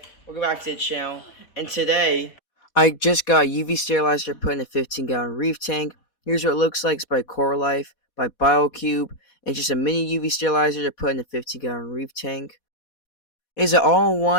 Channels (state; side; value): late; right; 4.2 ms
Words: Welcome back to the channel. And today, I just got a UV sterilizer put in a 15-gallon Reef tank. Here's what it looks like. It's by Coral Life, by BioCube. It's just a mini UV sterilizer to put in a 15-gallon Reef tank. It's an